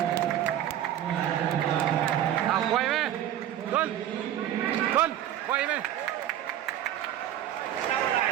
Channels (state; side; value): quieter; left; 11.6 dB